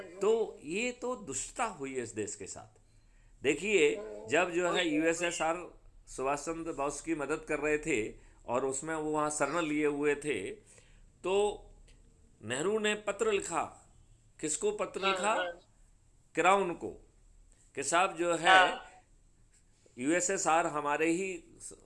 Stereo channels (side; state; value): both; identical; correlation 1.00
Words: तो ये तो दुष्टता हुई है इस देश के साथ। देखिए, जब जो है यूएसएसआर सुभाष चंद्र बोस की मदद कर रहे थे और उसमें वो वहाँ शरण लिए हुए थे, तो नेहरू ने पत्र लिखा। किसको पत्र लिखा? क्राउन को, कि साहब जो है यूएसएसआर हमारे ही